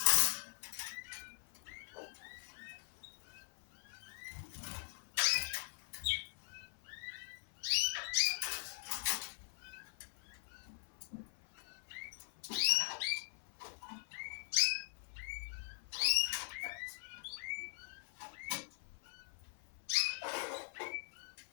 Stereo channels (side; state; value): right; silent; 50 dB below the other